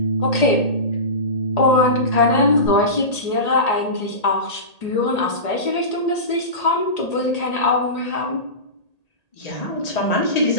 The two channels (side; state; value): right; late; 1.8 ms